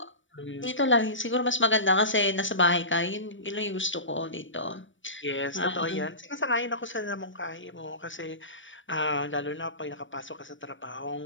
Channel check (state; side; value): late; right; 0.56 ms